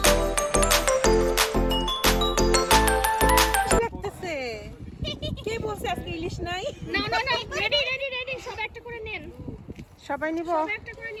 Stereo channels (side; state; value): both; identical; correlation 1.00